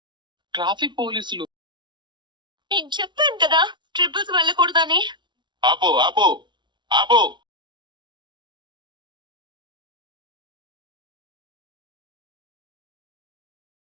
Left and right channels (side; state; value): left; late; 0.23 ms